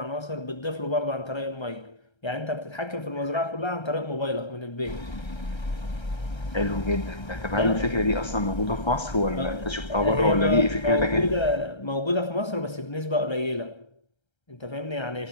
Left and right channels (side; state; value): right; late; 1.3 ms